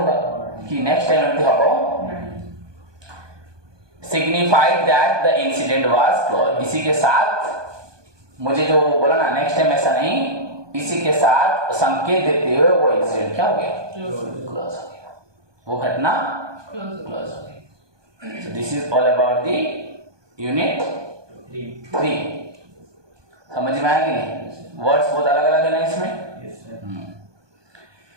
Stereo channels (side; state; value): left; late; 1.2 ms